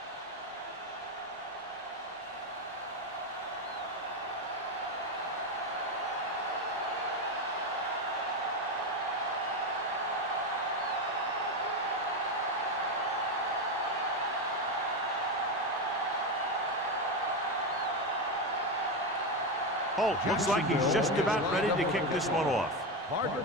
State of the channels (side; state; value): both; normal; correlation 0.12